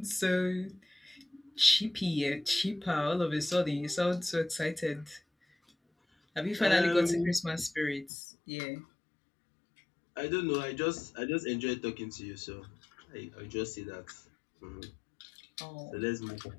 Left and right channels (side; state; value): right; drops out; at 8.1 s